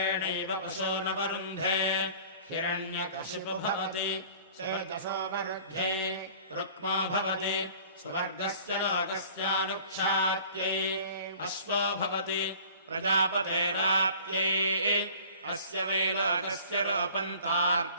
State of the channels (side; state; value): both; inverted; correlation -0.48